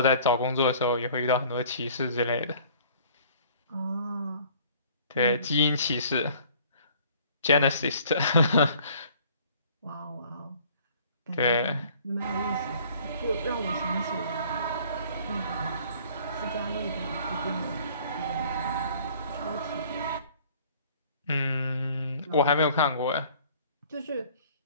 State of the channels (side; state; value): both; inverted; correlation -0.53